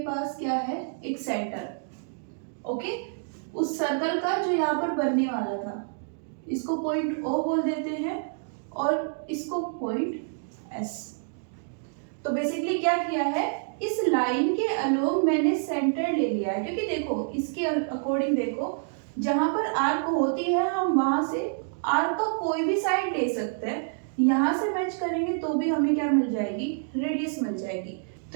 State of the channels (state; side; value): silent; left; digital silence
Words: पास क्या है, एक सेंटर, ओके, उस सर्कल का जो यहाँ पर बनने वाला था, इसको पॉइंट ओ बोल देते हैं और इसको पॉइंट एस। तो बेसिकली क्या किया है, इस लाइन के अलोंग मैंने सेंटर ले लिया है, क्योंकि देखो इसके अकॉर्डिंग देखो, जहां पर आर्क होती है हम वहां से आर्क का कोई भी साइड ले सकते हैं, यहां से मैच करेंगे तो भी हमें क्या मिल जाएगी, रेडियस मिल जाएगी।